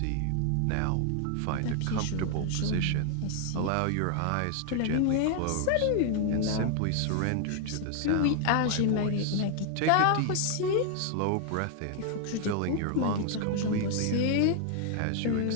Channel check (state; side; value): different; both; correlation 0.00